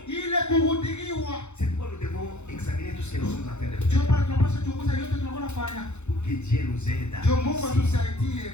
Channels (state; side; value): late; right; 0.82 ms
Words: ile kuhudhuriwa. C'est pourquoi nous devons examiner tout ce que nous sommes en train de Ndio faire. pale tunapaswa kuchunguza yote tunakuwa nafanya. Pour que Dieu nous aide à Ndio Mungu réussir. atusaidie